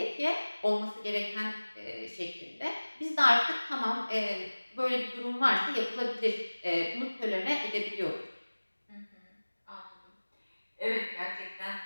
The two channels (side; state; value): both; inverted; correlation -1.00